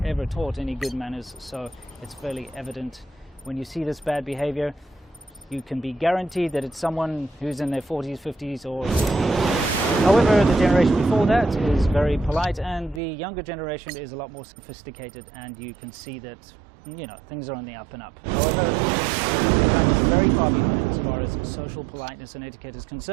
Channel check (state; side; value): drops out; left; at 13.0 s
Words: ever taught any good manners. So it's fairly evident when you see this bad behavior, you can be guaranteed that it's someone who's in their 40s, 50s, or 60s. However, the generation before that is very polite, and the younger generation is a lot more sophisticated, and you can see that things are on the up and up. However, China is very far behind as far as social politeness and etiquette is